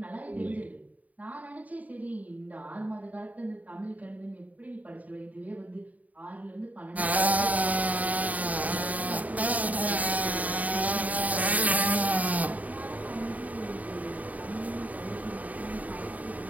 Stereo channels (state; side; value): late; left; 0.073 ms